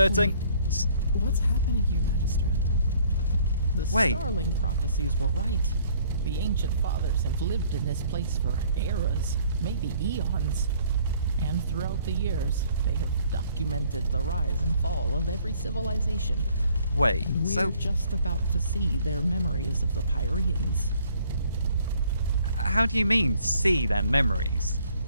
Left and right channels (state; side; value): inverted; both; correlation -0.60